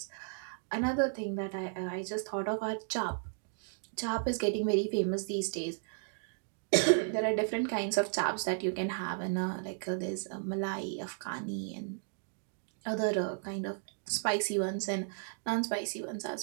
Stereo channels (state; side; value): silent; left; digital silence